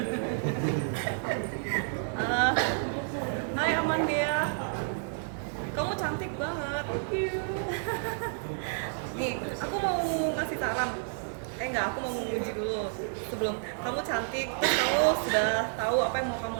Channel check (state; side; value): silent; left; digital silence